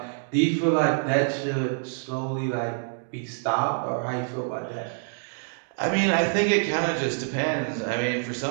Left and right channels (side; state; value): left; silent; digital silence